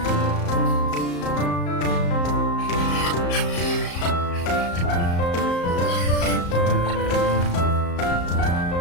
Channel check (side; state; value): right; late; 34 ms